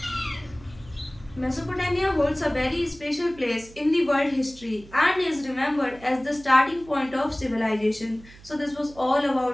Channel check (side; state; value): right; noise; hum, 21 dB below the sound